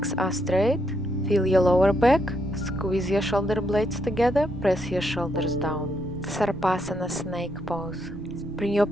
are straight. Feel your lower back. Squeeze your shoulder blades together. Press your shoulders down. Sarpasana snake pose. Bring your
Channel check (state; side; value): noise; right; rumble, 15 dB below the sound